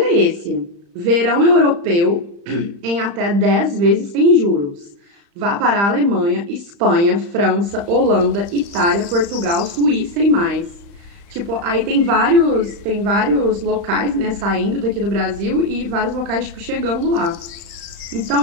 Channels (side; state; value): left; late; 35 ms